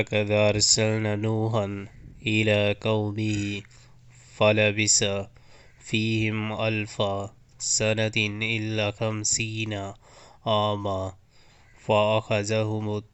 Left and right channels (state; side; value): identical; both; correlation 1.00